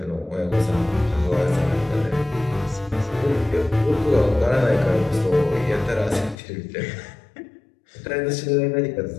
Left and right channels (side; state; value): right; drops out; at 6.4 s